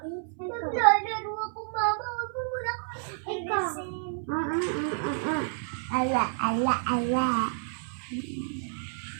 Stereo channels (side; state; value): left; silent; 58 dB below the other